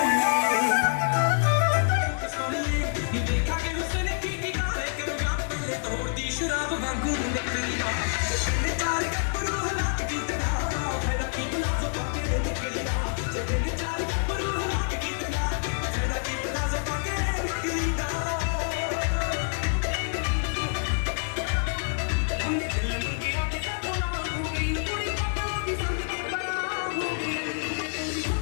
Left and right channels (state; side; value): silent; right; digital silence